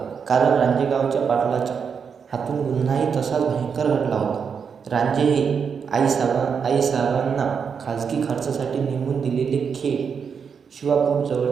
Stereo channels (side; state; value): left; quieter; 6.5 dB